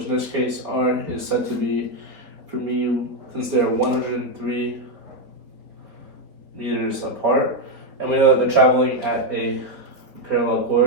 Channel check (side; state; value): left; late; 4.3 ms